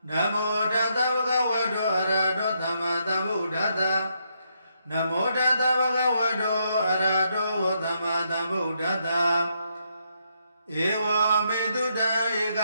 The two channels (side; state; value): both; inverted; correlation -0.77